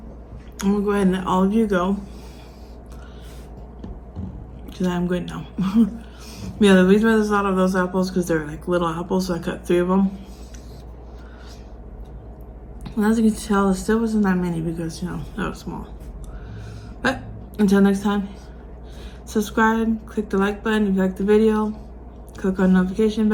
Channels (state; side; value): identical; both; correlation 1.00